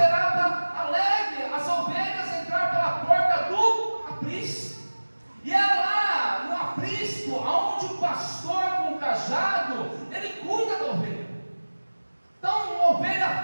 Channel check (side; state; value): both; inverted; correlation -1.00